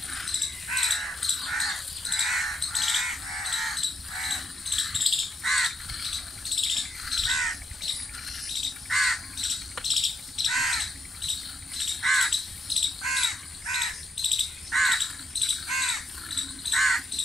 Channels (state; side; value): normal; both; correlation 0.79